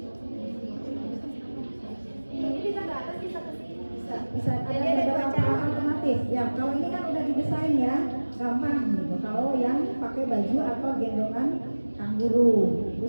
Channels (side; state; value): both; inverted; correlation -1.00